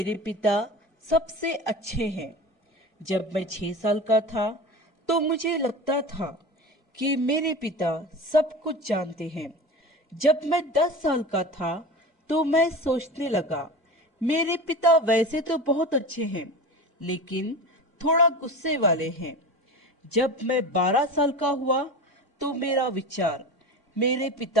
पिता सबसे अच्छे हैं। जब मैं 6 साल का था तो मुझे लगता था कि मेरे पिता सब कुछ जानते हैं। जब मैं 10 साल का था तो मैं सोचने लगा, मेरे पिता वैसे तो बहुत अच्छे हैं, लेकिन थोड़ा गुस्से वाले हैं। जब मैं 12 साल का हुआ तो मेरा विचार, मेरे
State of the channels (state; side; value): normal; both; correlation 0.31